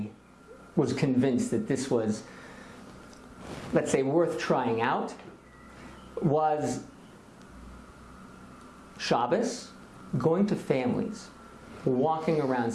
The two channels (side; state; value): both; identical; correlation 1.00